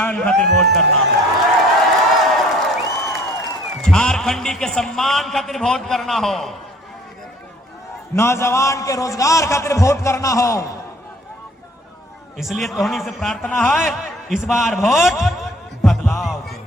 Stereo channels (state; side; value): normal; both; correlation 0.54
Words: खातिर वोट करना हो, झारखंडी के सम्मान खातिर वोट करना हो, नौजवान के रोजगार खातिर वोट करना हो। इसलिए तोहनी से प्रार्थना है इस बार वोट बदलाव के।